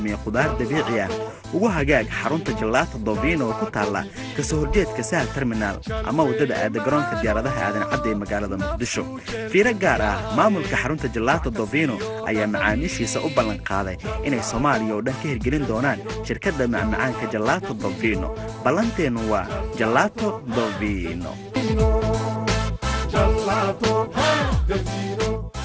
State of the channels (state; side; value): identical; both; correlation 1.00